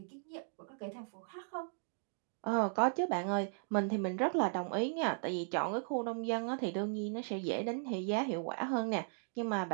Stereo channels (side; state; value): left; silent; digital silence